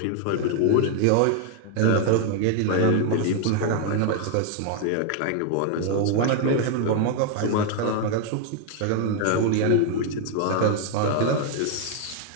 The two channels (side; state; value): both; different; correlation 0.00